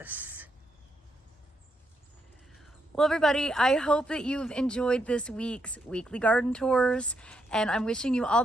Well, everybody, I hope that you've enjoyed this week's weekly garden tours, and I'm wishing you all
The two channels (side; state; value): both; normal; correlation 0.79